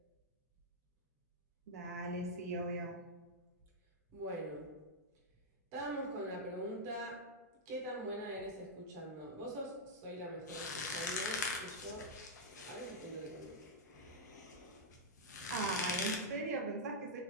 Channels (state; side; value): normal; both; correlation -0.05